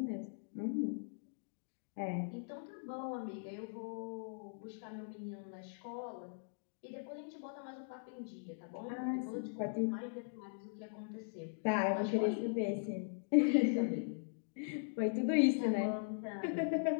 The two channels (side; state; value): right; silent; digital silence